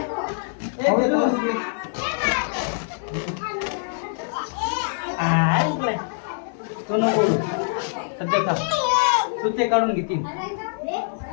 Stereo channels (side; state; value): right; silent; 61 dB below the other